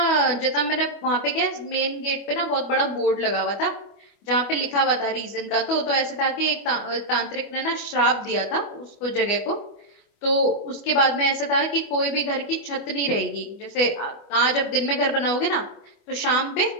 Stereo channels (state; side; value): late; right; 25 ms